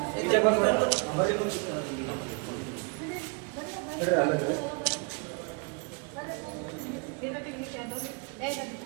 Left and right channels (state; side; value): quieter; left; 33.8 dB